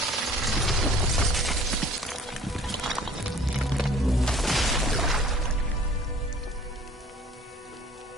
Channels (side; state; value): both; normal; correlation 0.51